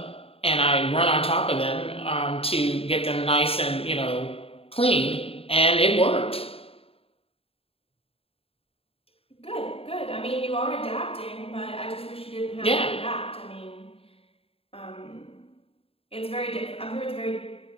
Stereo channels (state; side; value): late; right; 0.28 ms